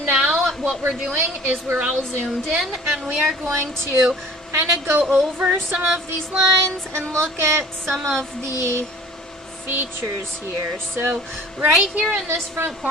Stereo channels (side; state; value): both; normal; correlation 0.48